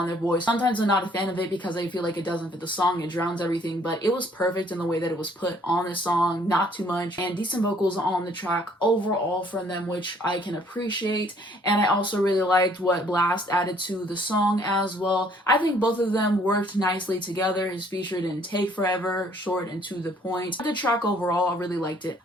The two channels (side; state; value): both; normal; correlation 0.61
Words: their voice. Sometimes I'm not a fan of it because I feel like it doesn't fit the song, it drowns everything, but it was perfect in the way that it was put on the song, not too much, and decent vocals on the track overall from them, which I can appreciate. And I also really liked what Blast added to the song as well. I think both of them worked nicely together. His feature didn't take forever, short and to the point. The track overall, I really liked it.